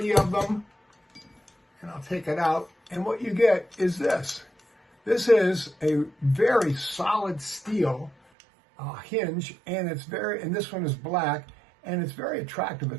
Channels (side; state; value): left; drops out; at 8.2 s